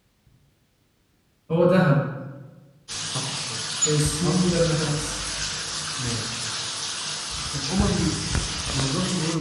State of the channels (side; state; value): both; identical; correlation 1.00